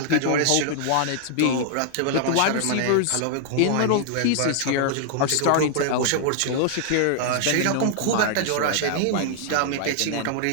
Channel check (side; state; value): both; different; correlation -0.01